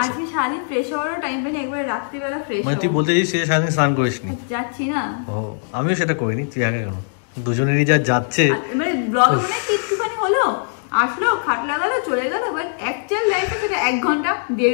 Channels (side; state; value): right; silent; digital silence